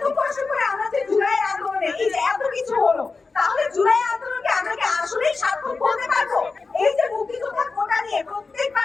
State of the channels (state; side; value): quieter; right; 4.2 dB